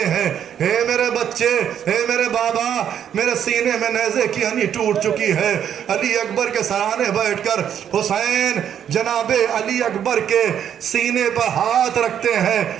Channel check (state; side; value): quieter; left; 9.3 dB